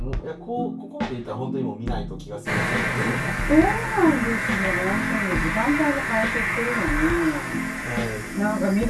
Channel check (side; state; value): both; identical; correlation 1.00